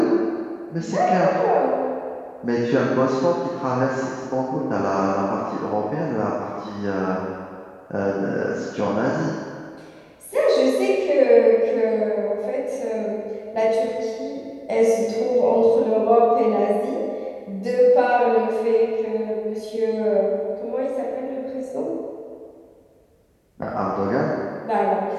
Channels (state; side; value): identical; both; correlation 1.00